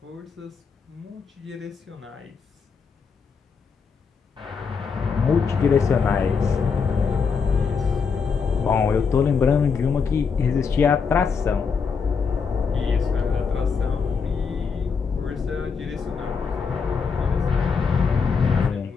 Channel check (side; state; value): right; quieter; 5.6 dB